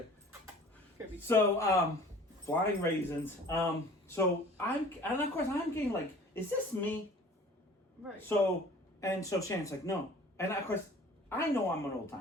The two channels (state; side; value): normal; both; correlation 0.47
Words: So, flying raisins. So and of course I'm getting like, is this me? Right. So Shannon's like, no. And of course, I know I'm an old